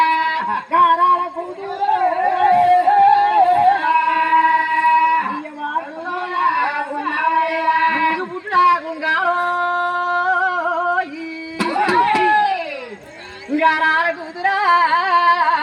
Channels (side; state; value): both; identical; correlation 1.00